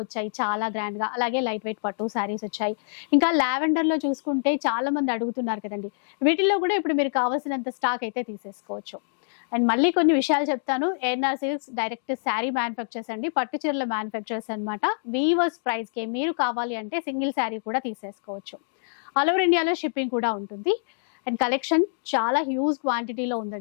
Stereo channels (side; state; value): right; silent; digital silence